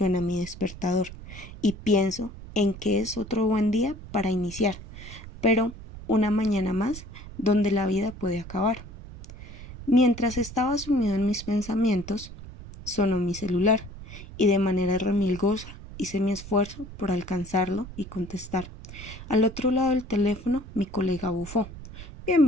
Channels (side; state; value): right; noise; rumble, 14 dB below the sound